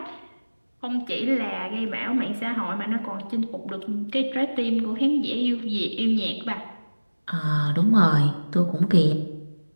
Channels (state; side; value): inverted; both; correlation -1.00